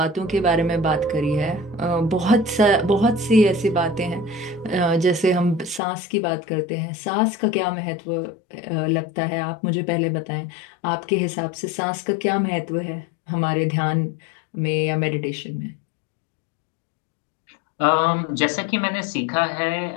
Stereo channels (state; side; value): drops out; right; at 5.8 s